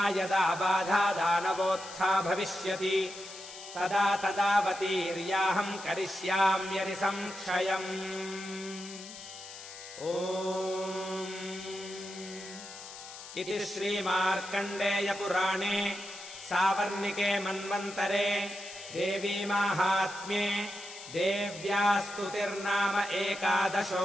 यदा बाधा दानवोत्था भविष्यति तदा तदावतीर्याहम् करिष्याम्यनि संक्षयम् ओम् इति श्रीमार्कण्डेयपुराणे सावर्णिके मन्वन्तरे देवीमाहात्म्ये देव्या स्तुतिर्नाम 11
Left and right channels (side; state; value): left; noise; hiss, 13 dB below the sound